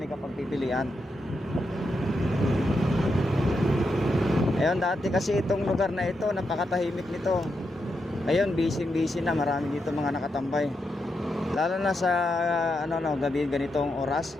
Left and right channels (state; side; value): normal; both; correlation 0.84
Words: ka pagpipilian. Ayun, dati kasi itong lugar na ito, napakatahimik nito. Ngayon, busy na. Marami dito mga nakatambay. Lalo na sa gabi ganitong oras.